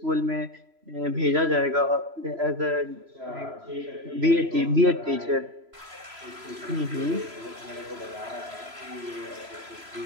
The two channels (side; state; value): left; late; 3.0 ms